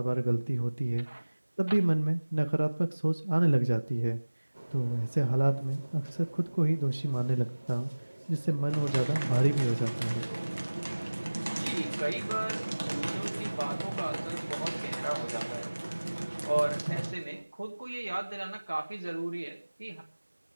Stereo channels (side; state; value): both; inverted; correlation -1.00